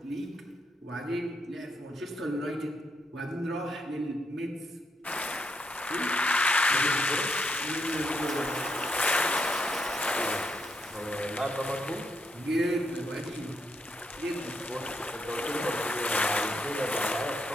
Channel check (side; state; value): both; normal; correlation 0.79